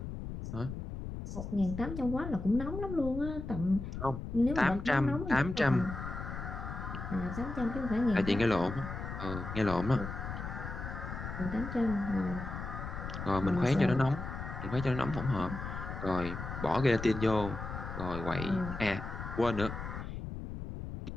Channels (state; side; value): noise; left; rumble, 7 dB below the sound